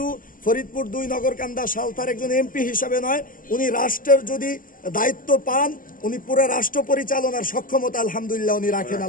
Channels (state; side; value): late; right; 0.40 ms